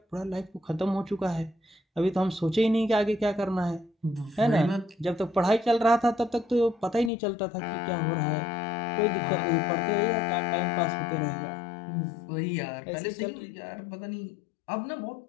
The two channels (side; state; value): right; drops out; at 7.1 s